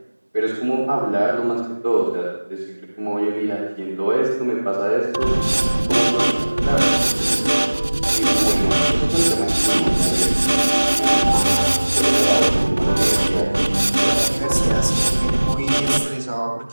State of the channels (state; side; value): inverted; both; correlation -1.00